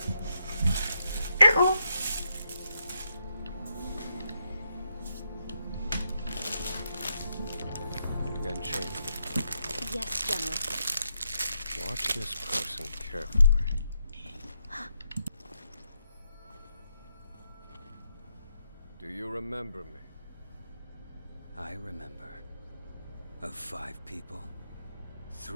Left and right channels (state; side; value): inverted; both; correlation -0.81